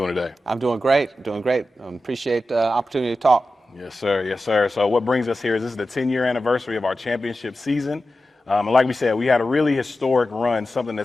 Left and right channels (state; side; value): normal; both; correlation 0.93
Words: today? I'm doing great. Appreciate the opportunity to talk. Yes, sir. Yes, sir. So what brings us here is this is the 10-year anniversary of our championship season. And like we said, we had a really historic run, something